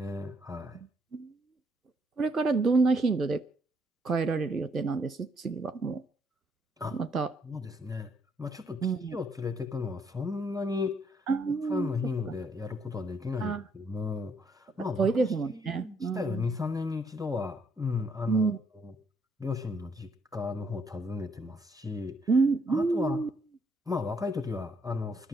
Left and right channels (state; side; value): normal; both; correlation 0.71